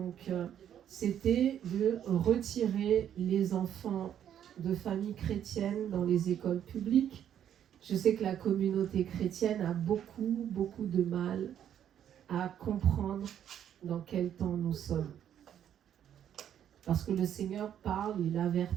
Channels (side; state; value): left; quieter; 9.9 dB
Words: c'était de retirer les enfants de familles chrétiennes dans les écoles publiques. Je sais que la communauté chrétienne a beaucoup de mal à comprendre dans quel temps nous sommes. Parce que le Seigneur parle, il